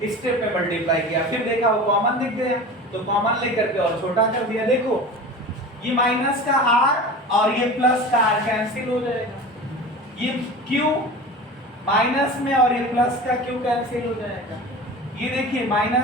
स्टेप में मल्टीप्लाई किया, फिर देखा वो कॉमन दिख गया तो कॉमन लेकर के और छोटा कर दिया, देखो ये माइनस का r और ये प्लस का r कैंसिल हो जाएगा, ये q माइनस में और ये प्लस का q कैंसिल हो जाएगा, ये देखिए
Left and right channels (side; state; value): both; normal; correlation 0.34